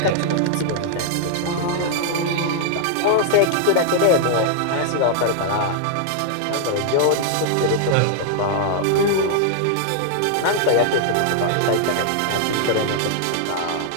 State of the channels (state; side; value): different; both; correlation -0.01